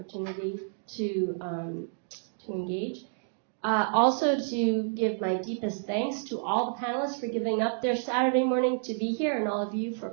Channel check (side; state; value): left; silent; digital silence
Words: to engage. Also to give my deepest thanks to all panelists for giving up their Saturday morning to be here, and all of you